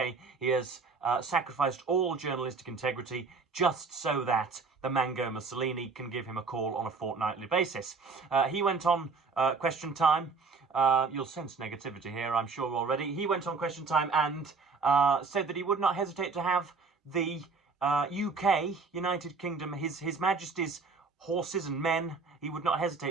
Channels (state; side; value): quieter; left; 4.6 dB